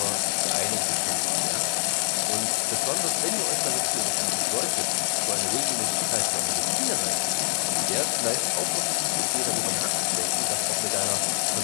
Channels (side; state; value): right; silent; 62 dB below the other